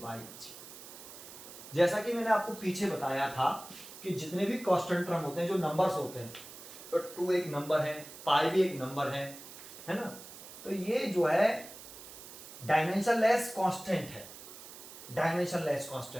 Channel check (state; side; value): noise; right; hiss, 15 dB below the sound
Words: बाई जी। जैसा कि मैंने आपको पीछे बताया था कि जितने भी कांस्टेंट टर्म होते हैं, जो नंबर्स होते हैं, तो 2 एक नंबर है, पाई भी एक नंबर है ना। तो ये जो है डायमेंशनलेस कांस्टेंट है, डायमेंशनलेस